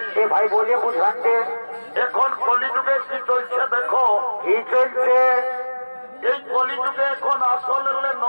এ ভাই বলে বুঝান দে। এখন কলিযুগে কি চলছে দেখো। কি চলছে? এই কলিযুগে এখন আসল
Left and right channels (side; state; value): both; inverted; correlation -1.00